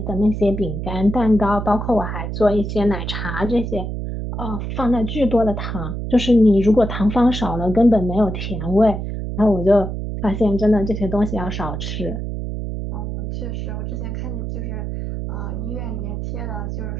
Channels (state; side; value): noise; right; hum, 4 dB below the sound